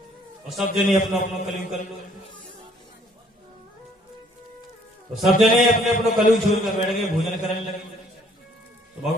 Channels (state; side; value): normal; both; correlation 0.61